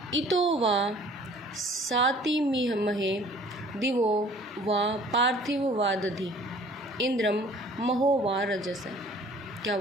इतो वा सातिमहे दिवो वा पार्थिव वा दधि इंद्रम महो वा रजस। क्या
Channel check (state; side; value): normal; both; correlation 0.52